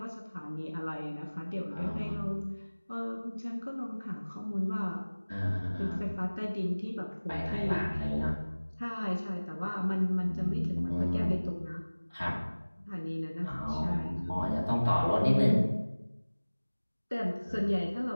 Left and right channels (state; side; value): inverted; both; correlation -1.00